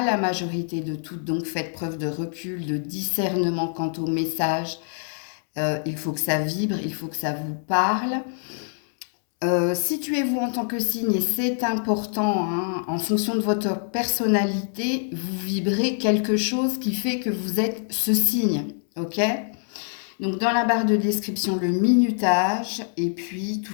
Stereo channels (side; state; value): right; silent; 62 dB below the other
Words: la majorité de toutes. Donc faites preuve de recul, de discernement quant au message. Il faut que ça vibre, il faut que ça vous parle. Situez-vous en tant que signe, et c'est important, hein, en fonction de votre personnalité, vous vibrez quelque chose qui fait que vous êtes ce signe, ok? Donc dans la barre de description, le minutage et puis